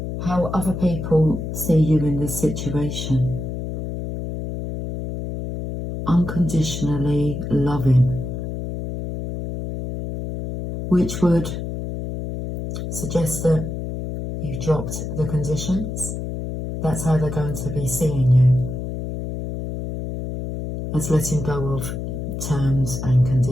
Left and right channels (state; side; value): noise; left; hum, 5 dB below the sound